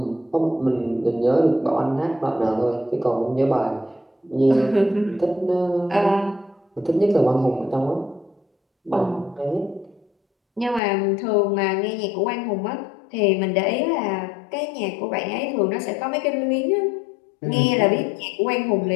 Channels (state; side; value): drops out; right; at 10.8 s